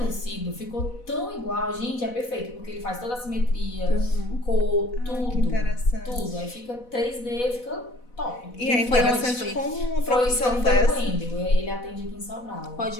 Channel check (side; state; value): right; late; 4.1 ms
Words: ficou tão igual. Gente, é perfeito, porque ele faz toda a simetria, cor, tudo. Que interessante. Tudo. Aí fica 3D, fica top. E é interessante como uma profissão dessa. Ele atende aqui em Sobral. Pode